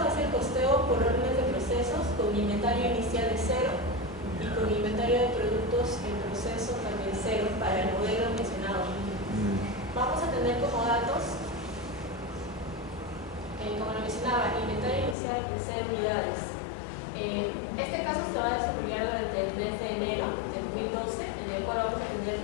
es el costeo por órdenes de procesos con inventario inicial de 0 y con inventario de productos en proceso también 0 para el modelo mencionado. Vamos a tener como datos, como lo mencionaba, inventario inicial de 0 unidades. Este caso se va a desarrollar durante el mes de enero de 2012, en el cual vamos a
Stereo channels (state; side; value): drops out; right; at 15.2 s